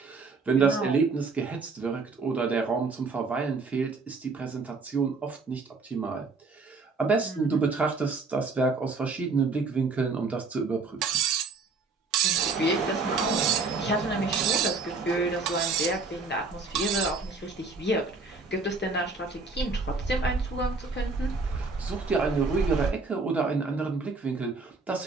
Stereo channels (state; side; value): quieter; left; 4.1 dB